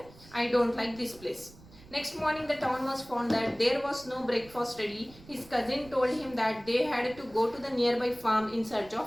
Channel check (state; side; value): noise; right; rumble, 22 dB below the sound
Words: I don't like this place. Next morning the town mouse found that there was no breakfast ready. His cousin told him that they had to go to the nearby farm in search